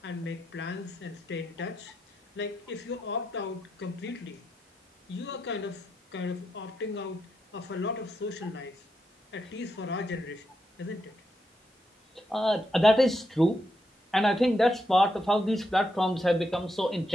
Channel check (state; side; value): normal; both; correlation 0.83